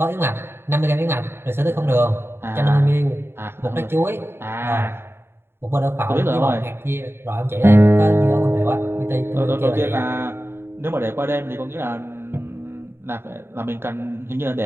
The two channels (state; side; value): late; left; 0.11 ms